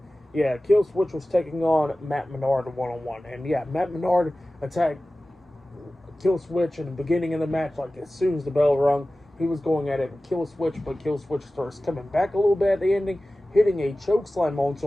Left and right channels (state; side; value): normal; both; correlation 0.96